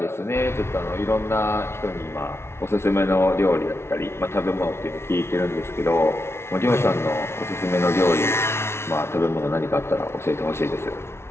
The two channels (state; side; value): late; right; 0.12 ms